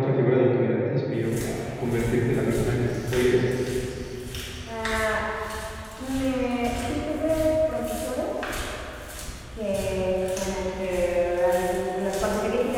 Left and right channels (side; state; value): both; identical; correlation 1.00